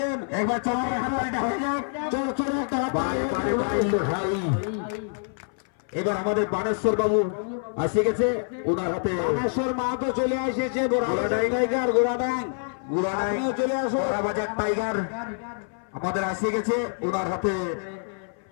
একবার চলে এবার আমাদের বানেশ্বর বাবু আসে গেছে, ওনার হাতে বানেশ্বর মাহাতো চলে এসেছে। টাইগার গোড়াডাং চলে আসে, বাজার টাইগার আমাদের আসে গেছে, ওনার হাতে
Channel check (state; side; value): silent; right; 59 dB below the other